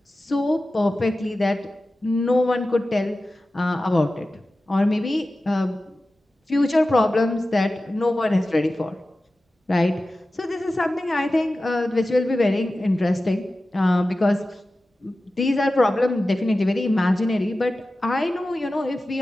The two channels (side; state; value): both; normal; correlation 0.95